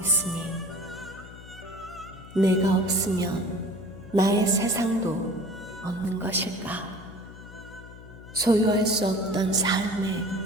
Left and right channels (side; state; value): left; noise; hum, 17 dB below the sound